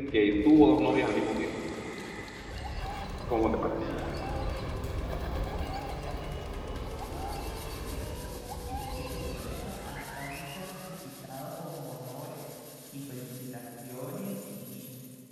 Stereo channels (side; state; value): both; identical; correlation 1.00